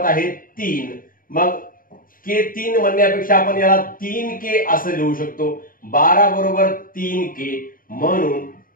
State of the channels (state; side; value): late; right; 0.41 ms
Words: आहे 3। मग k 3 म्हणण्यापेक्षा आपण याला 3k असं लिहू शकतो। 12 बरोबर 3k, म्हणून